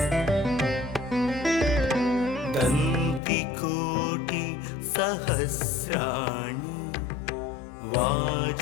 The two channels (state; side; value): drops out; right; at 3.2 s